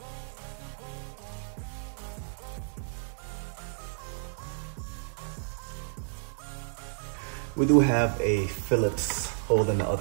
We do have a Phillips hole in the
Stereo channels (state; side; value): silent; left; digital silence